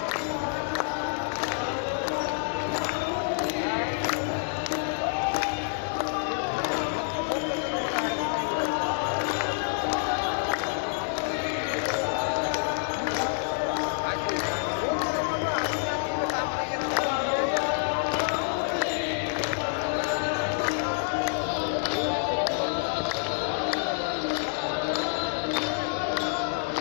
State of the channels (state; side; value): silent; right; 57 dB below the other